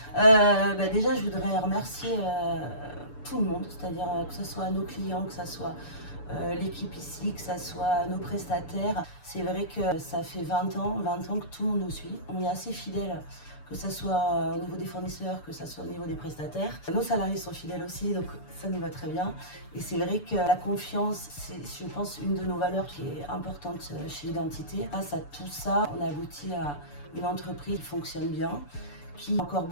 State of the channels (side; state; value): right; late; 6.9 ms